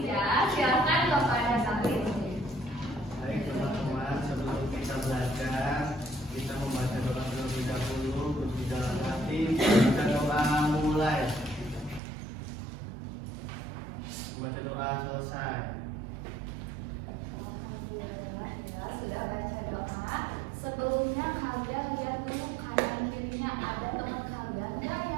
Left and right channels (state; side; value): drops out; left; at 12.0 s